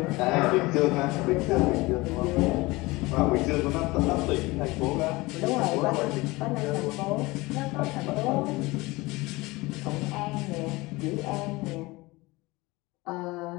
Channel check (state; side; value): quieter; right; 22.0 dB